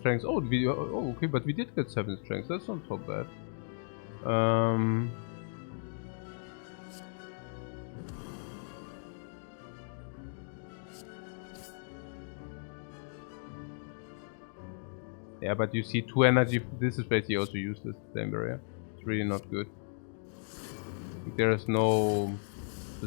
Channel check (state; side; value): silent; right; digital silence